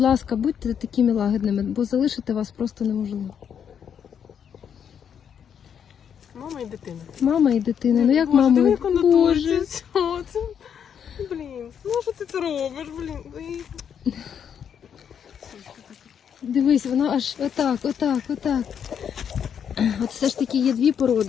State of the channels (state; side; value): quieter; right; 8.0 dB